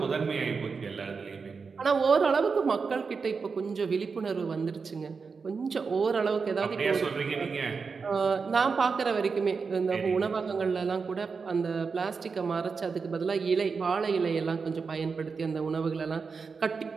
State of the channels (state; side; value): quieter; left; 5.1 dB